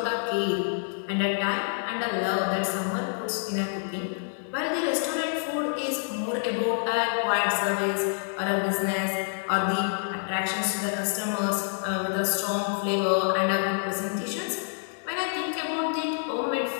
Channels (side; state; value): right; silent; 60 dB below the other